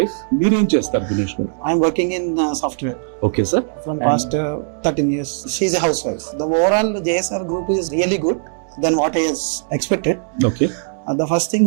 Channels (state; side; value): silent; left; 66 dB below the other